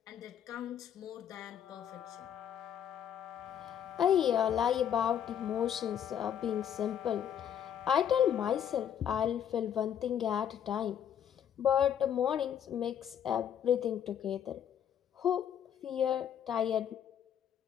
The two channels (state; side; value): quieter; right; 9.3 dB